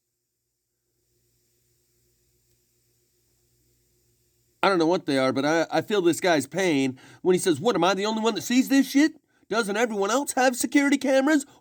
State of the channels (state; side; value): identical; both; correlation 1.00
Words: I don't know what they are, but I feel this guy's pain when he says, what, am I the only one that sees this shit? Doesn't everyone else have security cameras?